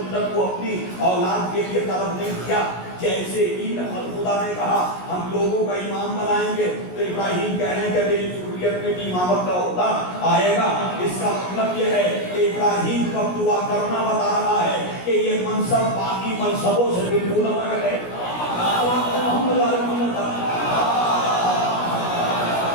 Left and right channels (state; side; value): late; right; 16 ms